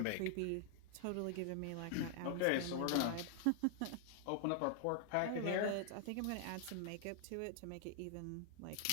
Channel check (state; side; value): different; both; correlation 0.00